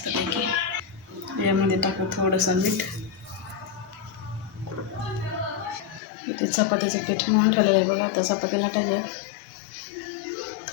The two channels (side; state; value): right; drops out; at 6.0 s